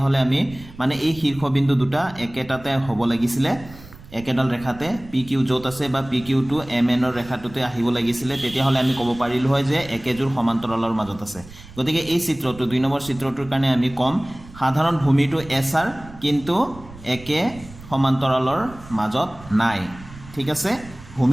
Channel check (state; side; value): noise; right; rumble, 18 dB below the sound